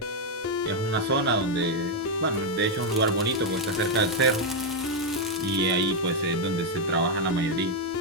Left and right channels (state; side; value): normal; both; correlation 0.01